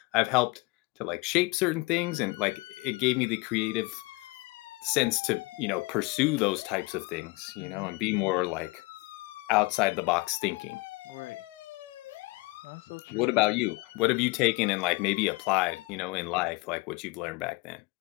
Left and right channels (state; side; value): quieter; right; 24.8 dB